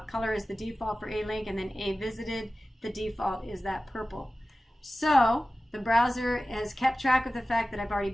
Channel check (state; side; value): normal; both; correlation 0.96